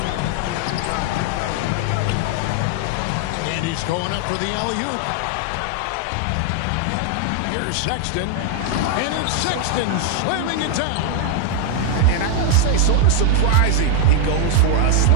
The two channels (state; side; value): different; both; correlation 0.00